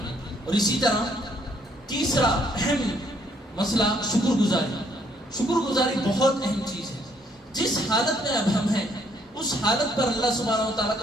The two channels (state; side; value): normal; both; correlation 0.67